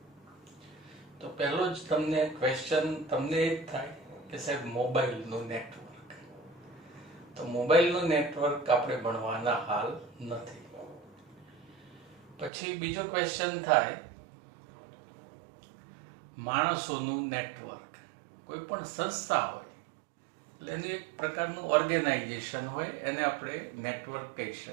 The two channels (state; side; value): drops out; left; at 12.5 s